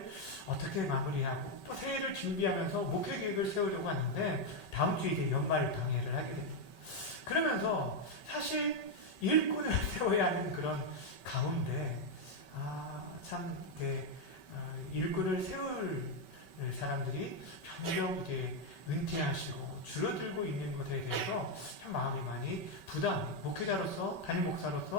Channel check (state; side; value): late; right; 5.2 ms